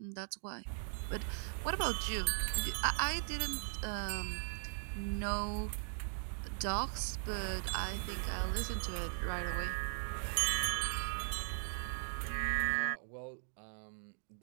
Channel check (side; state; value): left; silent; digital silence